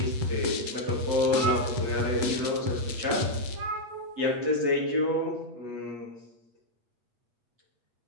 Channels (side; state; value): left; late; 8.4 ms